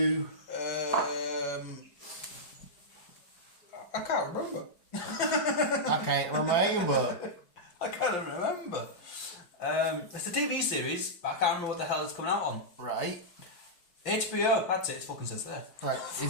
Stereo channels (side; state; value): right; late; 5.7 ms